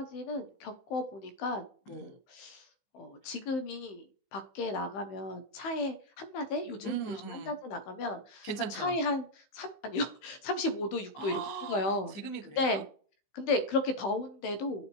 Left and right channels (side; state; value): right; late; 15 ms